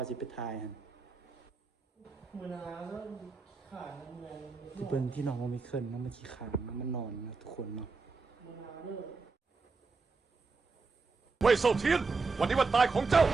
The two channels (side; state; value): left; quieter; 4.3 dB